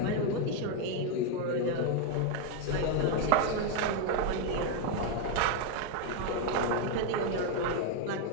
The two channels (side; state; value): both; different; correlation 0.01